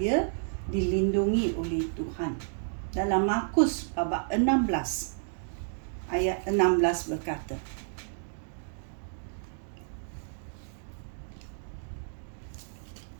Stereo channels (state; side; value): silent; left; digital silence